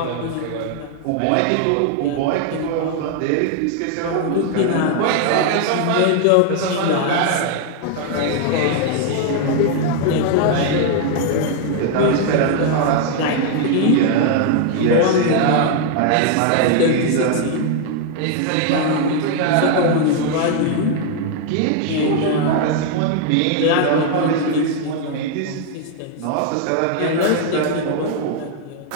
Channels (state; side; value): different; both; correlation 0.00